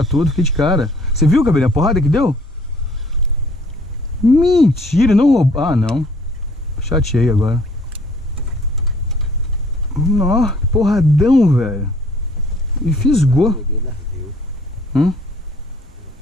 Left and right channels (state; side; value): normal; both; correlation 0.58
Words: tudo, fiquei de cara. Você viu, cabelinho, a porrada que deu? Mentira, não roubou. Ah, não. Chateei agora. Nó, porradão, velho. E fisgou.